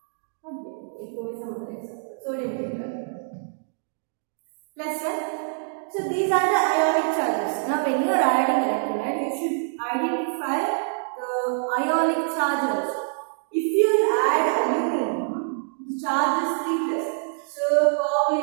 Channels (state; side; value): silent; left; digital silence